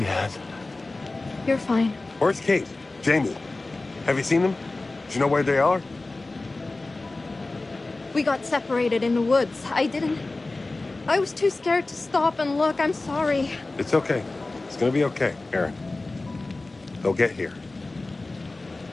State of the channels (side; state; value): right; quieter; 3.2 dB